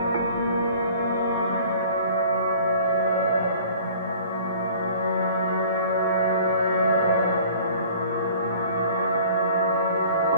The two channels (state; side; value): inverted; both; correlation -0.48